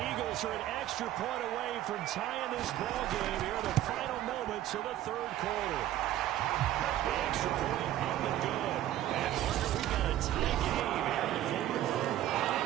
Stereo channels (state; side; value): quieter; left; 13.2 dB